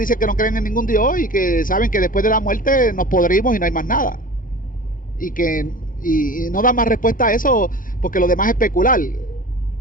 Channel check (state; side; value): late; right; 0.40 ms